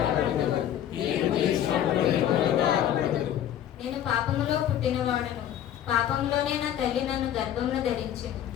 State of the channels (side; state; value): right; quieter; 10.7 dB